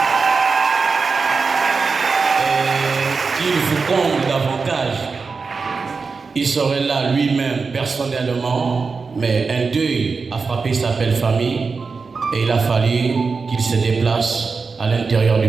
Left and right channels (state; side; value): quieter; left; 4.7 dB